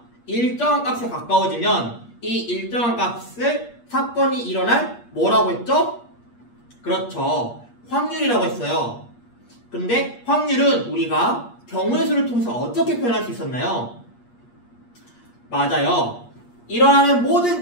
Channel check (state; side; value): late; right; 8.5 ms